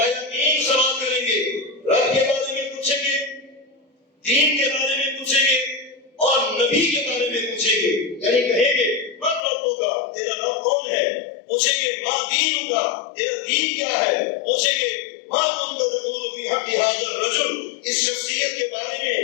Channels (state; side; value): drops out; right; at 9.4 s